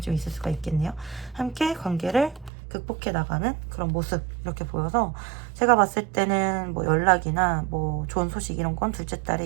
좀 있을 수가 있겠네요. 함께 관계를 극복해 나가는 그런 모습 이렇게 보여서, 제가 봤을 때는 뭐 연락이나 뭐 좋은 소식 이런 건 둘째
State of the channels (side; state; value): left; drops out; at 2.5 s